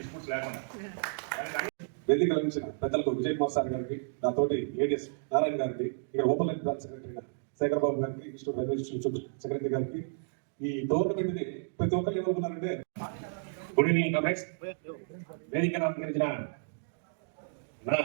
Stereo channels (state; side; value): silent; left; digital silence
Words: లేకుండా. వేదిక లభించిన పెద్దలకు విజయ్ కుమార్ సార్ గారికి, నాతోటి ఏడిఎస్ నారాయణ గారికి, ఇక్కడ open line branch secretary Shekhar Babu గారికి, ఇన్స్టిట్యూట్ రైల్వే సెక్రటరీ గారికి, ఈ టోర్నమెంట్ ని ప్రతి ఒక్కరు ఏమనుకున్నారంటే గుడ్ ఈవినింగ్ కాంగ్రెస్. వేదికను అలంకరించిన నా